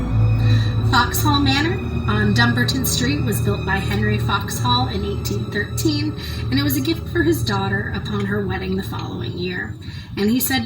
Foxhall Manor on Dumbarton Street was built by Henry Foxhall in 1813, and it was a gift for his daughter upon her wedding the following year. And he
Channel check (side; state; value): both; identical; correlation 1.00